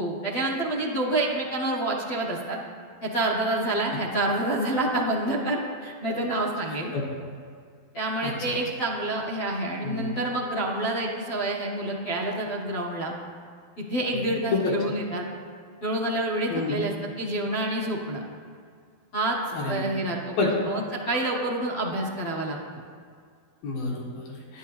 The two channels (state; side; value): late; right; 12 ms